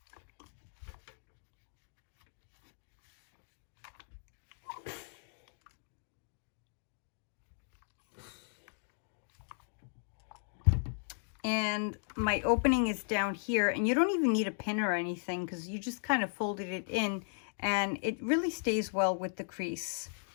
And my opening is down here, and you don't even need a pin or anything because you just kind of folded it in and it really stays well with the crease.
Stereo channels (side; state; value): right; silent; digital silence